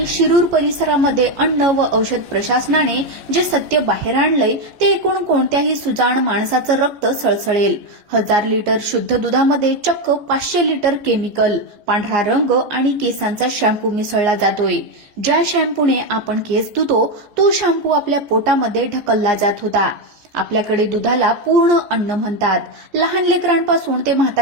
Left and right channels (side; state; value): left; late; 14 ms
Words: शिरूर परिसरामध्ये अन्न व औषध प्रशासनाने जे सत्य बाहेर आणलंय ते ऐकून कोणत्याही सुजाण माणसाचं रक्त सळसळेल. 1000 लिटर शुद्ध दुधामध्ये चक्क 500 लिटर केमिकल, पांढरा रंग आणि केसांचा शॅम्पू मिसळला जातोय. ज्या शॅम्पूने आपण केस धुतो तो शॅम्पू आपल्या पोटामध्ये ढकलला जात होता. आपल्याकडे दुधाला पूर्ण अन्न म्हणतात. लहान लेकरांपासून ते